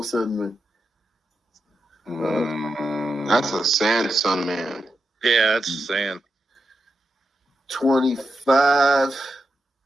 a Sun man? That's a Sun man. Yeah, that's San. 25,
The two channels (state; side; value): normal; both; correlation 0.87